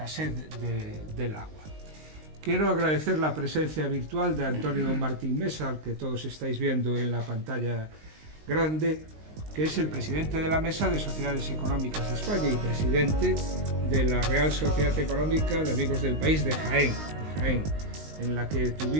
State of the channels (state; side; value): late; left; 19 ms